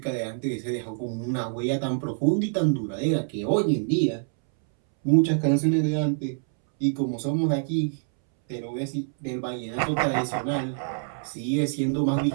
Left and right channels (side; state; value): left; silent; 61 dB below the other